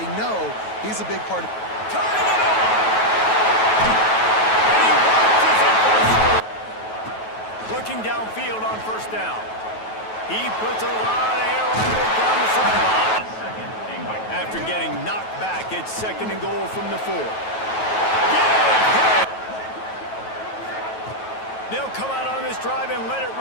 know he's a big part of... Turning it on. And he watches it for the score. Looking downfield on first down. He puts a lot of air under it down the sideline. After getting knocked back, it's second and goal from the 4. Yeah! They'll come out on this drive and let it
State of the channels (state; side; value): late; right; 9.2 ms